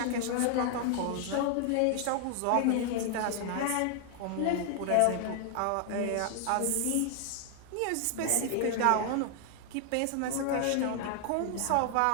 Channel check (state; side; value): different; both; correlation 0.00